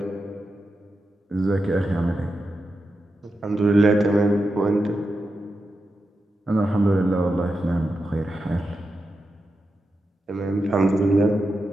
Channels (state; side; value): normal; both; correlation 0.88